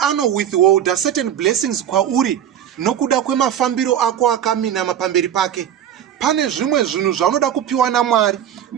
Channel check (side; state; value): left; quieter; 9.9 dB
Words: withhold certain blessings kwauri nokuda kwemafambiro ako akaminama pamberi pake. pane zvimwe zvinhu zvaunoda kupiwa naMwari,